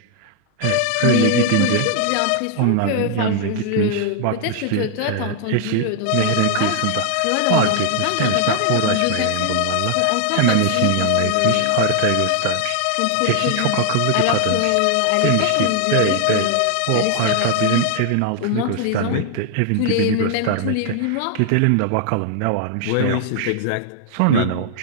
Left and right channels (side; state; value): both; different; correlation 0.00